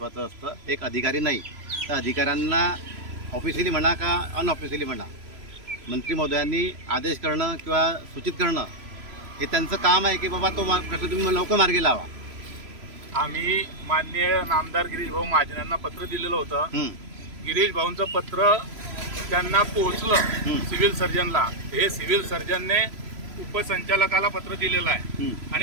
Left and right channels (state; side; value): late; left; 3.0 ms